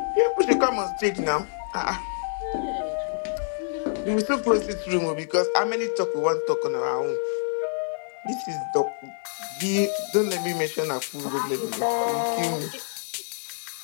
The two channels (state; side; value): silent; right; digital silence